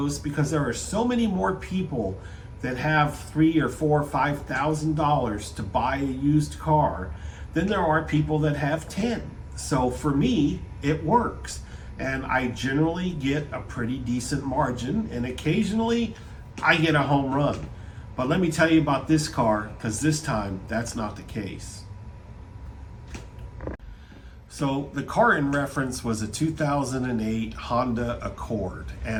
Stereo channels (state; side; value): identical; both; correlation 1.00